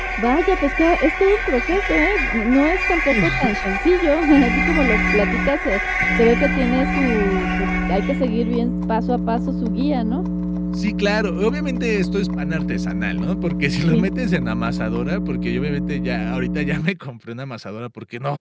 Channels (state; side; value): identical; both; correlation 1.00